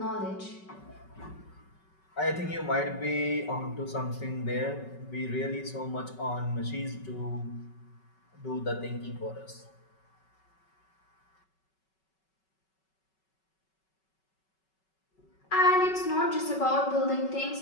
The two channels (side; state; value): right; late; 5.3 ms